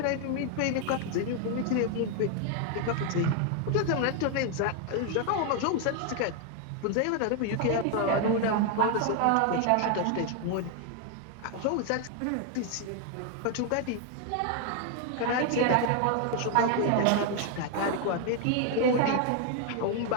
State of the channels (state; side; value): different; both; correlation 0.01